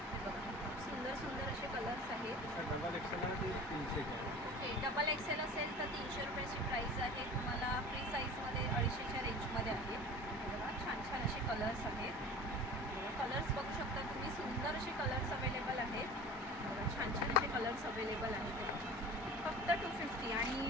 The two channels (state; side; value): normal; both; correlation 0.38